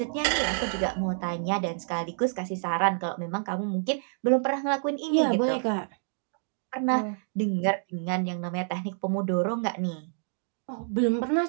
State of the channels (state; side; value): silent; left; digital silence